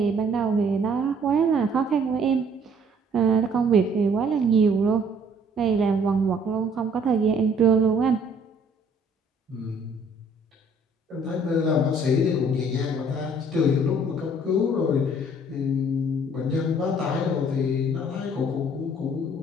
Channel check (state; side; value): normal; both; correlation 0.59